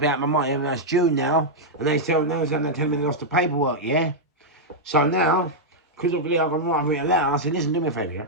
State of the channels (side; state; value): both; normal; correlation -0.05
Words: out my money, and that's June now, and they tell me they lost the paperwork, yeah. So now, because of the I've written a letter, I said, listen, do me a favour, yeah.